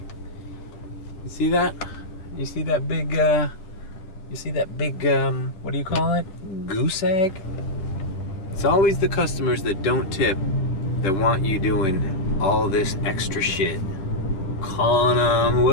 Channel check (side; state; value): right; late; 10 ms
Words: You see that? You see that big, what do you call it? Goose egg? It's always the customers that don't tip that want you doing all this extra shit. Calling them,